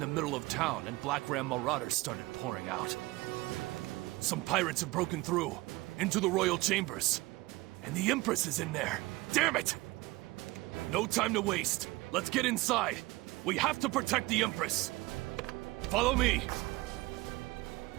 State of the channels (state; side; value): quieter; left; 20.9 dB